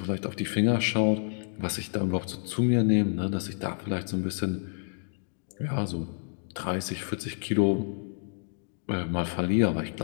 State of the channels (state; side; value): silent; right; digital silence